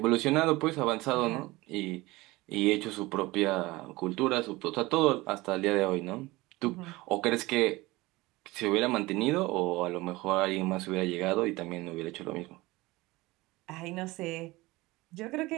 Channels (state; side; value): quieter; left; 20.7 dB